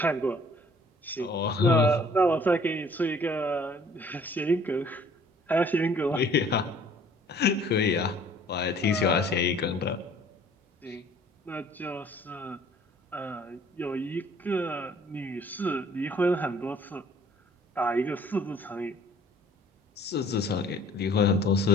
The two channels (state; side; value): normal; both; correlation 0.55